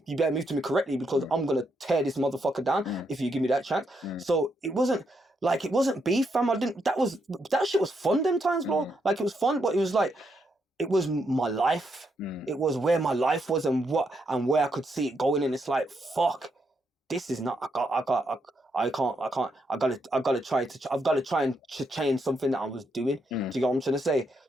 you better move to me correctly because I'm gonna tear this motherfucker down if you give me that chance. So it wasn't beef, fam. That shit was fun them times, bro. Like, it was fun, but it was like, it was my life. It was where my life was and where I could see it going. And it's like, fuck, this is not, I've got to try and change something that I was doing. Do you get what I'm trying to say?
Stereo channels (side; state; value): both; normal; correlation 0.79